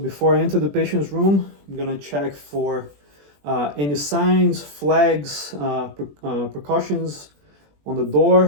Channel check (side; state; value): left; late; 20 ms